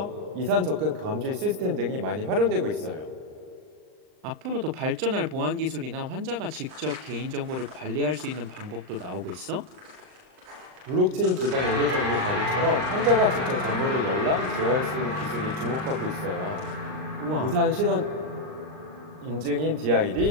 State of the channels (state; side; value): late; left; 39 ms